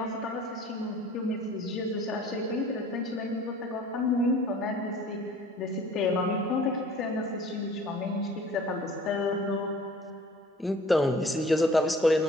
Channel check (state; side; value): normal; both; correlation 0.49